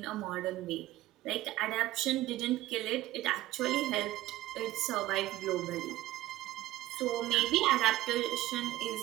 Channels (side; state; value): left; quieter; 16.2 dB